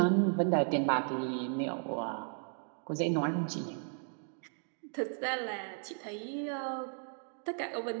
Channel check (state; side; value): silent; left; 54 dB below the other